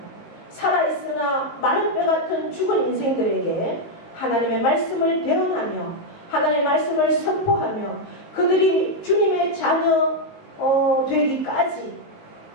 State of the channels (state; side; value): late; right; 19 ms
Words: 살아있으나 마른 뼈 같은 죽은 인생들에게 하나님의 말씀을 대언하며 하나님의 말씀을 선포하며 그들이 주님의 자녀 되기까지